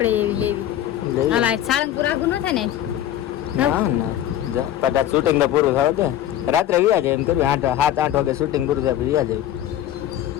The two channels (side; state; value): right; quieter; 11.9 dB